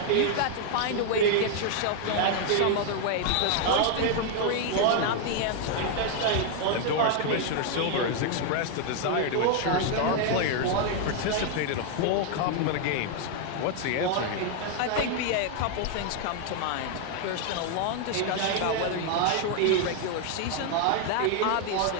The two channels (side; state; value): both; different; correlation 0.00